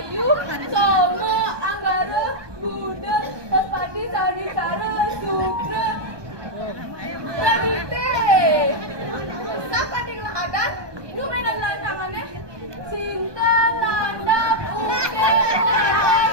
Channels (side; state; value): left; late; 1.2 ms